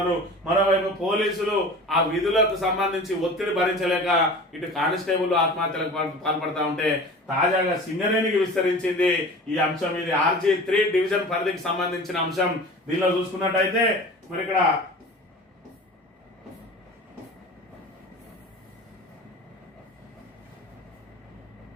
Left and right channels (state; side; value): normal; both; correlation 0.38